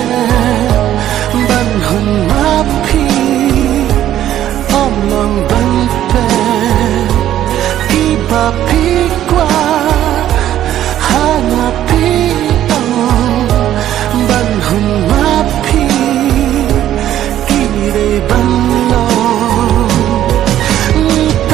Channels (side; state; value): left; quieter; 12.1 dB